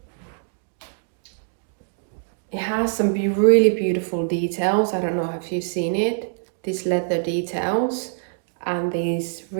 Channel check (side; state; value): left; silent; digital silence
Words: It has some really beautiful details. I don't know if you've seen it. These leather details and these